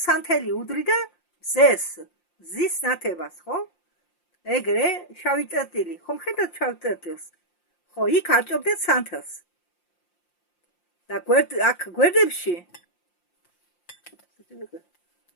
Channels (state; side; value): late; right; 5.7 ms